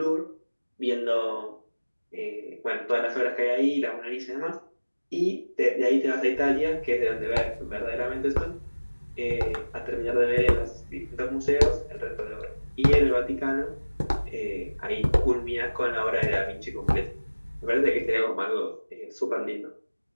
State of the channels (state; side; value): inverted; both; correlation -1.00